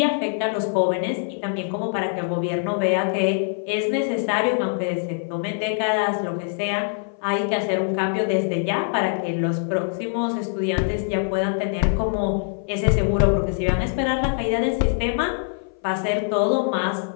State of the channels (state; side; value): silent; right; 59 dB below the other